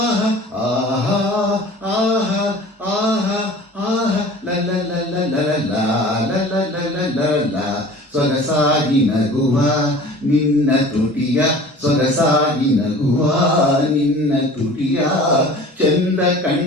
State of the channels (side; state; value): both; normal; correlation 0.43